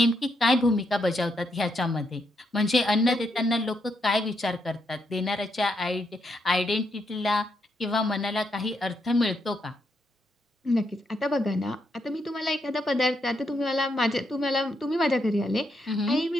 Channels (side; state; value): both; normal; correlation 0.79